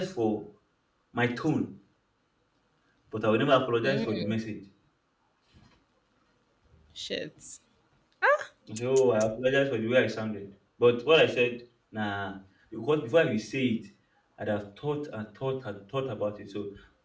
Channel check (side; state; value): both; identical; correlation 1.00